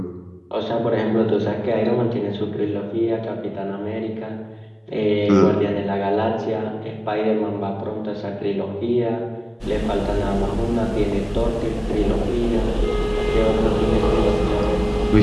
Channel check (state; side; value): identical; both; correlation 1.00